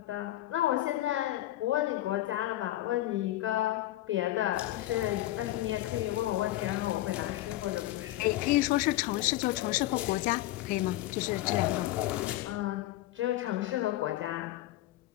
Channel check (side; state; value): right; quieter; 15.7 dB